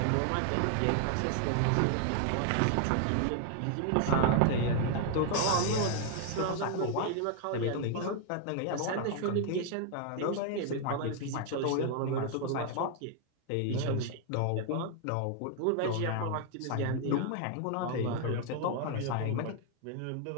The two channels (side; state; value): both; different; correlation 0.00